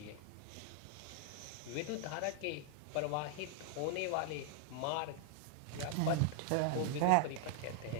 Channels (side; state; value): both; different; correlation 0.00